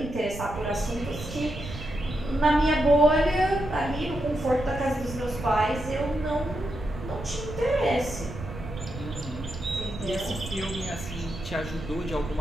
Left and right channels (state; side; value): noise; right; rumble, 10 dB below the sound